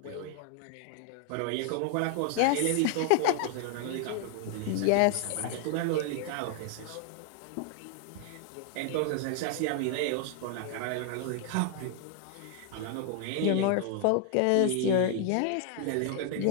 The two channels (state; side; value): different; both; correlation 0.00